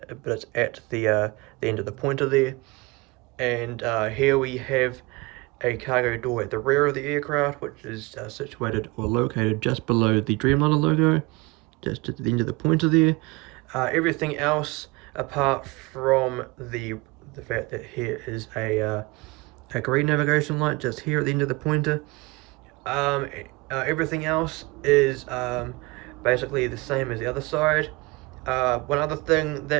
it's at the end of the pointer there. And here we have a cargo door at the rear of the aircraft, which is situated or located just below the Dreamliner logo, just at the end of the pointer there. Everything else, apart from the fact that here is a green navigation light just here at the end of the pointer, everything else is basically the same as the other side. One other thing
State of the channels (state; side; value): quieter; left; 24.2 dB